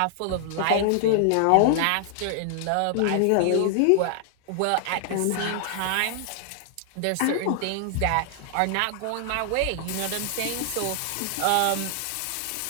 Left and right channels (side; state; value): both; different; correlation 0.00